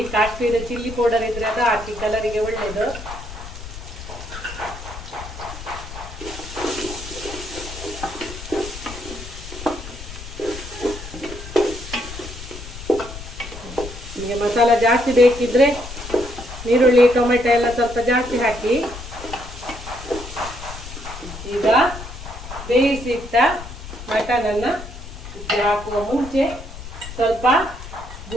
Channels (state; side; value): noise; left; rumble, 12 dB below the sound